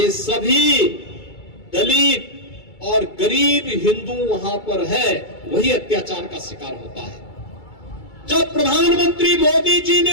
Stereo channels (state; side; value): late; right; 2.3 ms